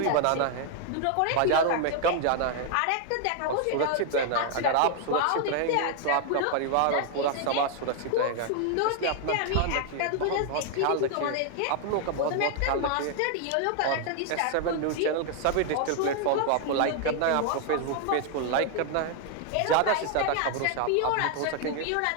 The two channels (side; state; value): both; different; correlation 0.00